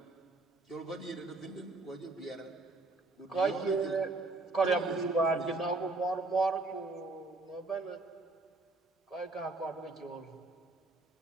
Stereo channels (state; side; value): quieter; left; 3.2 dB